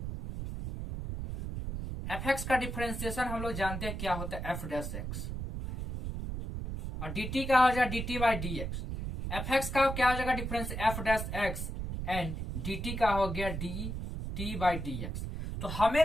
fx का डिफरेंशिएशन हम लोग जानते हैं क्या होता है, f डैश x, और dt का हो जाएगा dt बाई dx। fx का क्या हो जाएगा difference, f dash x, and dt का हो गया dt बाई dx। तो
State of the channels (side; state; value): right; noise; rumble, 5 dB below the sound